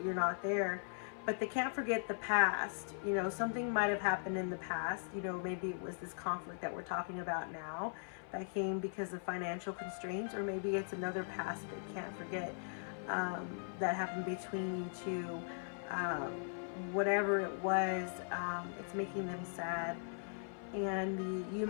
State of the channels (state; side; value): silent; right; 51 dB below the other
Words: You're not there. But they can't forget the past. Something might have happened in the past. Maybe it was this conflict that we're talking about now that came because of financial constraints, or maybe it's another past they can't forget that happened between you two. whatever it was, it's making them sad. And the "you